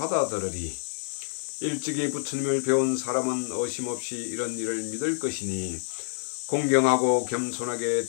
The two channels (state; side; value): silent; right; digital silence